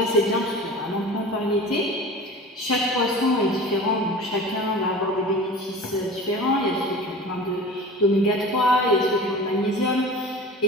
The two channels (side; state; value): both; normal; correlation 0.37